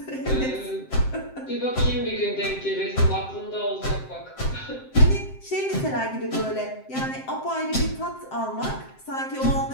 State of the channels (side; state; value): right; late; 7.7 ms